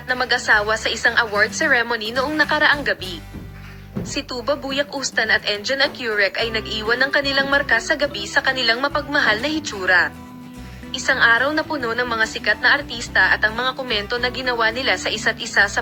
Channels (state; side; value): identical; both; correlation 1.00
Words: na mag-asawa sa isang award ceremony noong nakaraang gabi. Si Tuba Buyak Ustan at Engin Ecurec ay nag-iwan ng kanilang marka sa gabi sa kanilang mapagmahal na hitsura. Isang araw na puno ng mga sikat na artista at ang mga komento na ginawa nila sa isa't isa